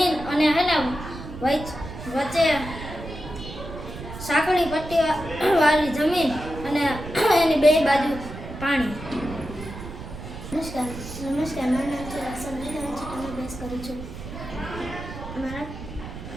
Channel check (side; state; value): right; noise; rumble, 11 dB below the sound